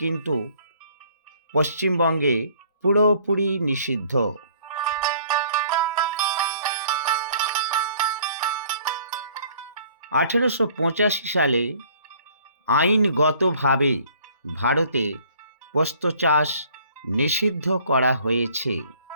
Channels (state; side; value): inverted; both; correlation -0.56